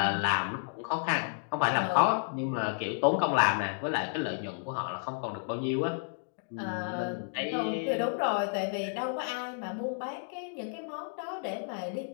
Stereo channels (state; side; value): silent; right; digital silence